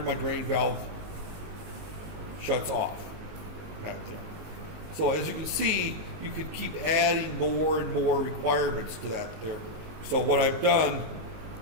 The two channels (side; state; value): left; late; 19 ms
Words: my drain valve shuts off. So as you can see, you can keep adding more and more requirements to that there. So what I've done